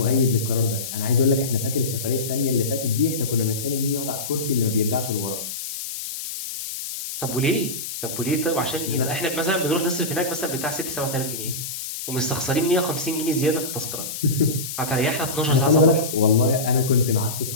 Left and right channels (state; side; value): noise; left; hiss, 7 dB below the sound